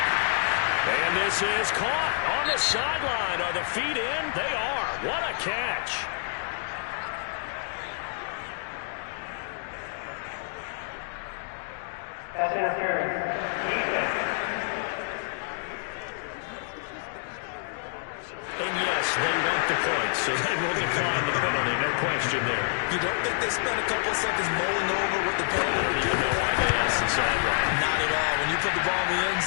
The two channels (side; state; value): right; silent; digital silence